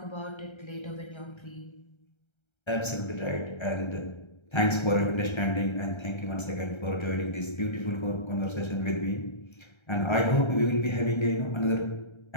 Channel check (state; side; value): late; right; 1.3 ms